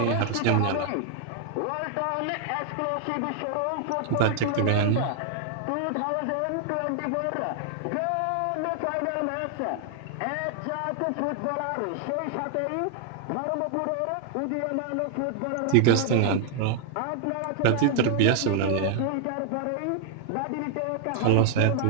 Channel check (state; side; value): different; both; correlation 0.00